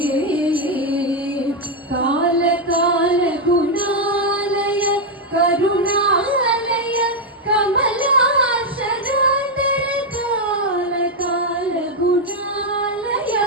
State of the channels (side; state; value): both; normal; correlation 0.02